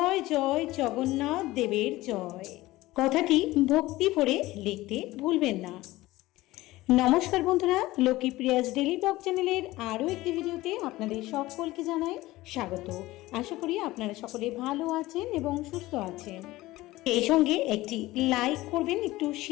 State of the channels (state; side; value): quieter; right; 18.1 dB